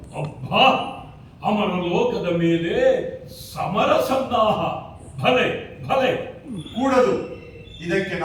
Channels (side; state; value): both; identical; correlation 1.00